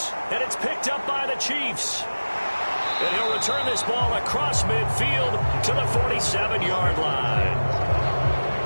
and it's picked up by the Chiefs. And he'll return this ball across midfield to the 47-yard line.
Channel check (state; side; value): inverted; both; correlation -1.00